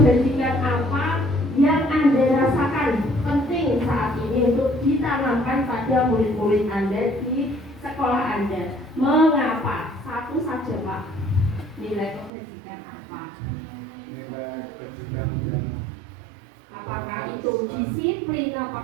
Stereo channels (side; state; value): left; drops out; at 12.3 s